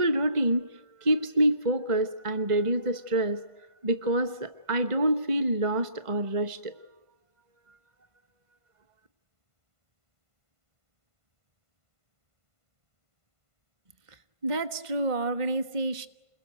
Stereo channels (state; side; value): late; left; 1.5 ms